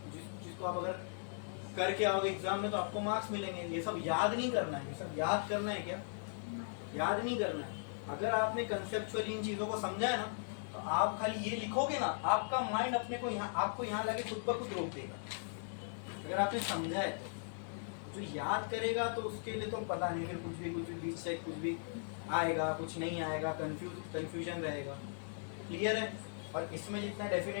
जिसको आप अगर करके आओगे एग्जाम में तो आपको मार्क्स मिलेंगे। ये सब याद नहीं करना है, ये सब याद करना है क्या? याद नहीं करना है। अगर आपने कंसेप्चुअली इन चीजों को समझा है ना, तो आप खाली ये लिखोगे ना, आपका माइंड अपने को आपको यहाँ लगे खुद ब खुद रोक देगा। अगर आपने समझा है तो जो याद करेगा तो उसके लिए तो पता नहीं, फिर कुछ भी बीच से कुछ भी आएगा, कुछ नहीं आएगा, कंफ्यूजन रहेगा। क्लियर है? और इसमें जितना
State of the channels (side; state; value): right; silent; digital silence